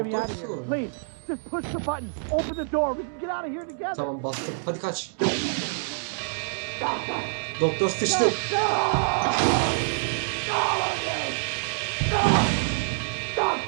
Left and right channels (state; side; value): silent; left; digital silence